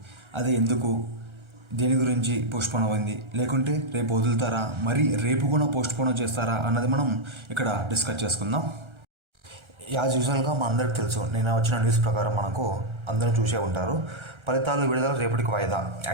అది ఎందుకు, దేని గురించి పోస్ట్పోన్ అయింది, లేకుంటే రేపు వదులుతారా, మరి రేపు కూడా పోస్ట్పోన్ చేస్తారా అన్నది మనం ఇక్కడ డిస్కస్ చేసుకుందాం. యాజ్ యూజువల్గా అందరికీ తెలుసు, నేను వచ్చిన న్యూస్ ప్రకారం మనకు అందరూ చూసే ఉంటారు, ఫలితాలు విడుదల రేపటికి వాయిదా.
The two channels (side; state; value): left; late; 1.3 ms